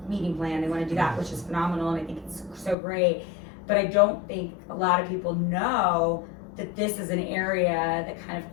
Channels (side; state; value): right; drops out; at 2.8 s